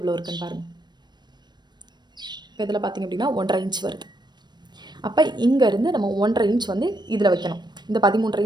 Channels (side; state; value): left; late; 0.21 ms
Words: இருக்குன்னு பாருங்கள். இப்போ இதில் பார்த்திங்க அப்படின்னா 1.5 இன்ச் வருது. அப்போ இங்கேருந்து நம்ம 1.5 இன்ச் வந்து இதில் வைக்கணும். இந்த 13.5